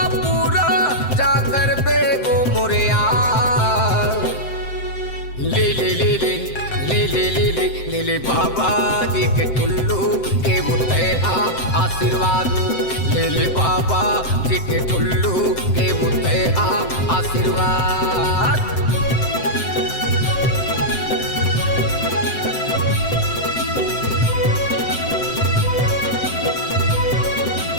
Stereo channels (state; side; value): late; right; 7.7 ms